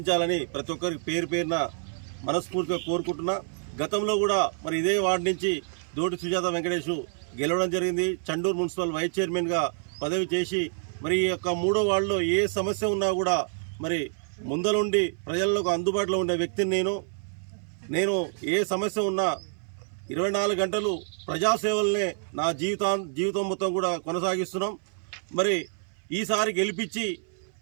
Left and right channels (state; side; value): silent; left; 58 dB below the other